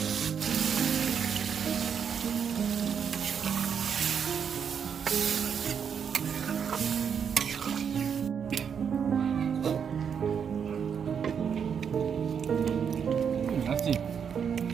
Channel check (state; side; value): quieter; left; 7.2 dB